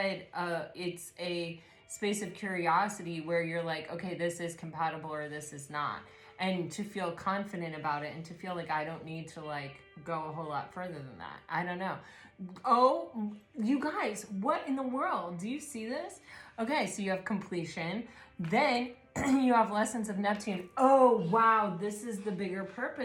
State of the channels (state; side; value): identical; both; correlation 1.00